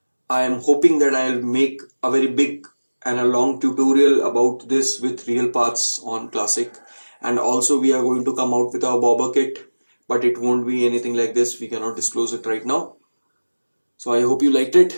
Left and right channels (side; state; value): both; inverted; correlation -1.00